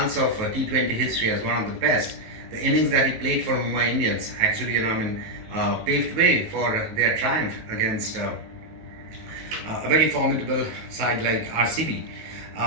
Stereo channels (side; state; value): left; late; 18 ms